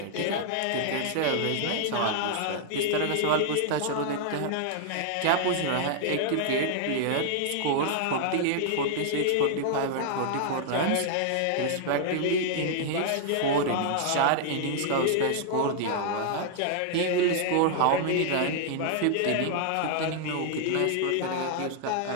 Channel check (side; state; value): both; different; correlation -0.01